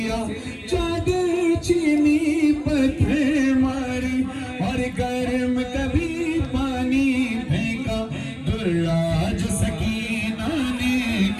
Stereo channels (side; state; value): both; identical; correlation 1.00